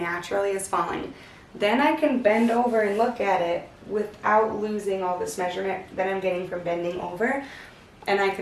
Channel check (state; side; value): identical; both; correlation 1.00